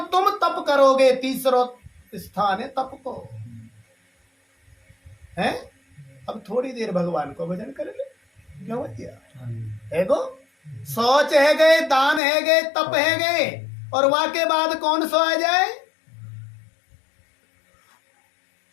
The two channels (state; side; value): drops out; right; at 12.2 s